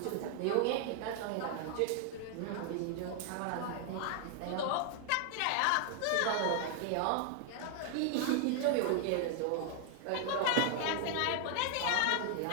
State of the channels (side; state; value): both; different; correlation 0.00